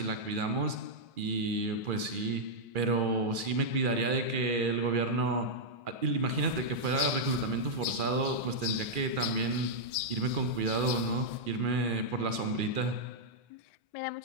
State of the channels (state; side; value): late; left; 2.4 ms